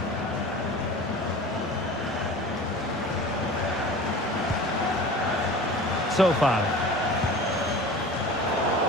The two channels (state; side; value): normal; both; correlation 0.38